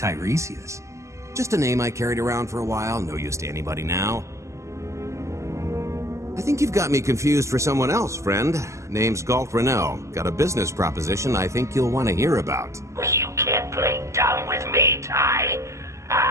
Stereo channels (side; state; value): left; late; 0.14 ms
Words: Just a name I carried around for a while, no use to anybody now. I think you've got me confused for someone else, friend. Name's Galt Renault. Got a business proposition I think you'll want to hear about. You can't play dumb with me, Ty.